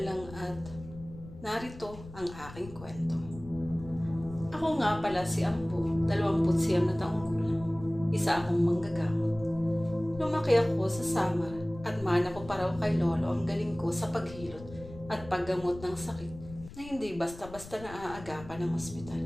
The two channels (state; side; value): noise; left; rumble, 16 dB below the sound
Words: lang at narito ang aking kwento. Ako nga pala si Ambo, 29 na taong gulang. Isa akong manggagamot. Lumaki ako sa Samar at mana ko pa raw kay Lolo ang galing ko sa paghilot at paggamot ng sakit na hindi basta-basta naaagapan ng ospital.